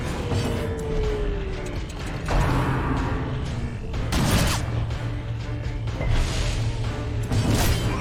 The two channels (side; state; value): both; identical; correlation 1.00